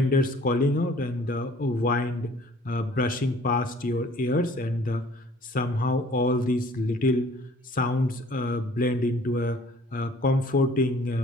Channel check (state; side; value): normal; both; correlation 0.54